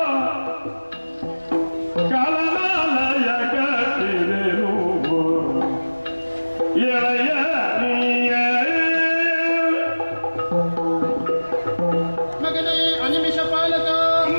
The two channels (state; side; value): inverted; both; correlation -1.00